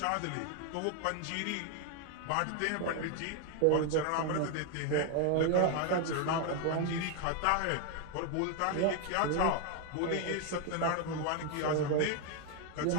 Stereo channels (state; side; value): different; both; correlation 0.00